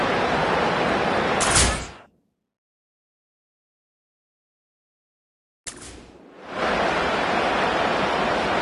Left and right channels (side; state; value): both; identical; correlation 1.00